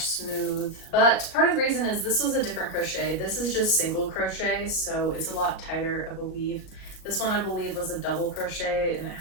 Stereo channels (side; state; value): right; late; 37 ms